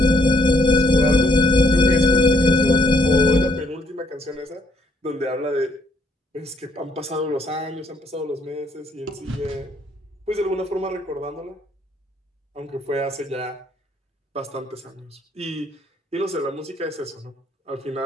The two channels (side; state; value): both; normal; correlation 0.68